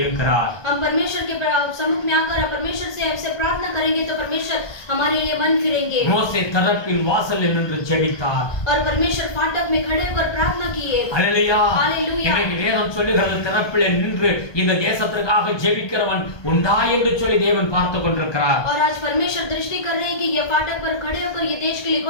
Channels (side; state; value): right; late; 1.2 ms